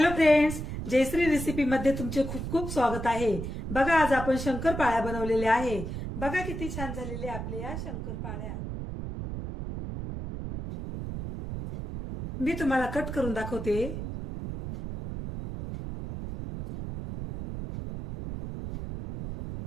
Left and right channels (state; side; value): noise; right; rumble, 6 dB below the sound